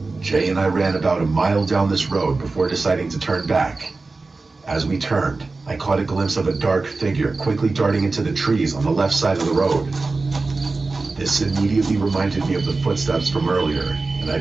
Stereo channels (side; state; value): left; quieter; 3.7 dB